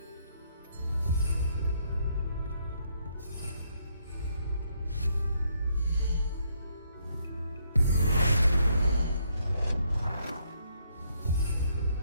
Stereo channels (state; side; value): inverted; both; correlation -0.72